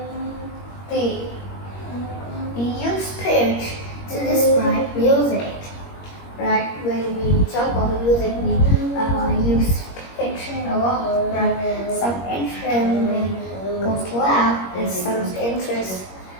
We use pitch to describe music, right? When we talk about music, we use pitch a lot, right? Some instrument goes loud, and some instruments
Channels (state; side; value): late; right; 21 ms